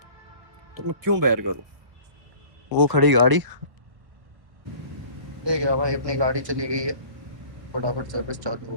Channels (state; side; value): late; left; 1.3 ms